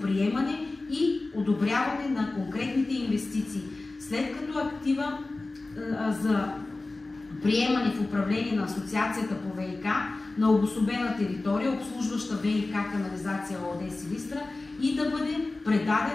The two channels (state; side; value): quieter; right; 3.2 dB